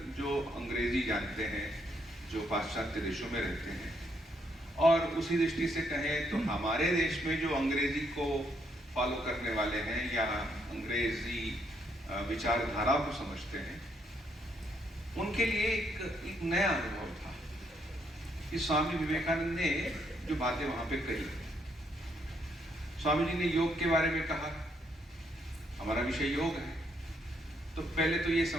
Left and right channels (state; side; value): normal; both; correlation 0.73